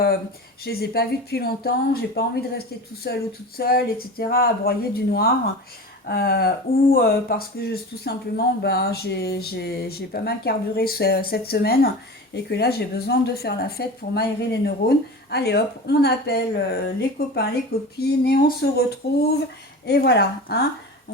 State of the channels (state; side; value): normal; both; correlation 0.32